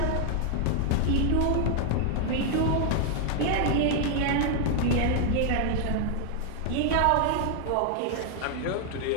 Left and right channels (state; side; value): different; both; correlation 0.00